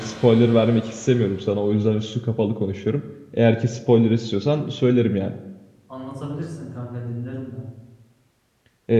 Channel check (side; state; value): both; identical; correlation 1.00